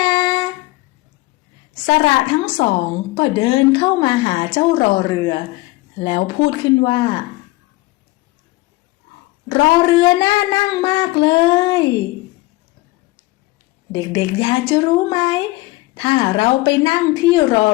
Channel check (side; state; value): right; quieter; 20.6 dB